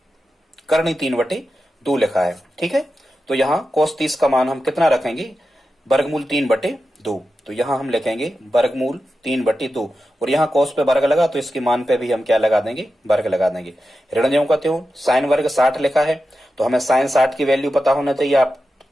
करणी 3/2 लिखा है, ठीक है। तो यहाँ cos 30 का मान हम कितना रखेंगे, वर्गमूल 3/2। तो यहाँ हम लिखेंगे वर्गमूल 3/2, और यहाँ cos पे वर्ग लगा तो इसके मान पे भी हम क्या लगा देंगे, वर्ग लगा देंगे। ऋण ज्यों का त्यों, साइन वर्ग 60 लिखा है, तो हमें साइन 60 की वैल्यू पता होना चाहिए। आप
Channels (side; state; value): both; normal; correlation 0.91